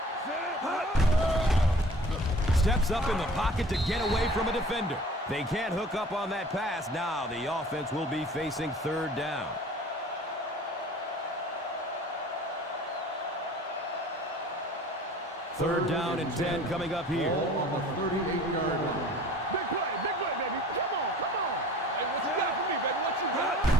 Steps up in the pocket to get away from a defender. They can't hook up on that pass. Now the offense will be facing third down. Third down and 10 coming up here. Ball on the 38-yard line. Big play, baby. Come on. Hey, what you got for me, baby? What you got?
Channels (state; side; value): normal; both; correlation 0.47